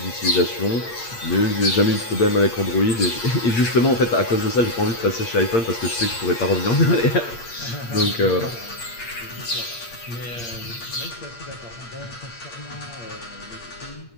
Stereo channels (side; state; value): right; late; 8.6 ms